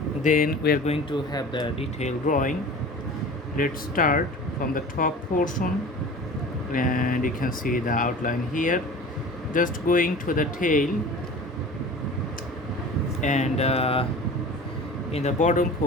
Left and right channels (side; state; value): both; normal; correlation 0.39